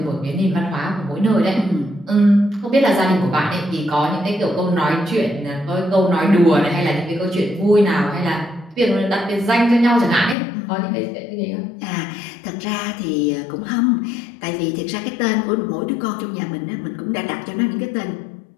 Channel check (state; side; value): drops out; right; at 10.4 s